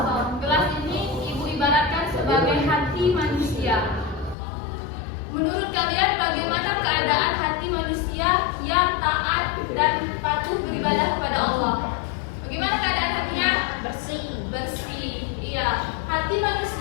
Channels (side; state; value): right; drops out; at 4.4 s